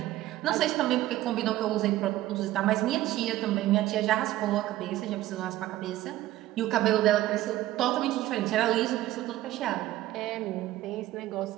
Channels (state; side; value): quieter; left; 15.3 dB